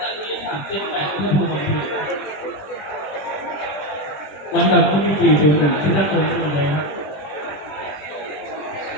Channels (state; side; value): late; right; 20 ms